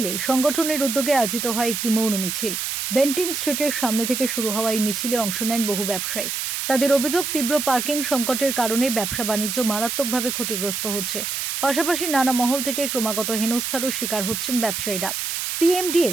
সংগঠনের উদ্যোগে আয়োজিত হয় একটি মৌন মিছিল। বেন্টিং স্ট্রিটের সামনে থেকে শুরু হওয়া এই মিছিলে অংশ নেন বহু ব্যবসায়ী। তাদের অভিযোগ, তীব্র পার্কিং সংকটের কারণে ব্যবসা বাণিজ্য মারাত্মকভাবে ক্ষতিগ্রস্ত হচ্ছে। পাশাপাশি নানা মহল থেকে ক্রমাগত হেনস্থারও শিকার হচ্ছেন ব্যবসায়ীরা।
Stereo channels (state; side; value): noise; right; hiss, 3 dB below the sound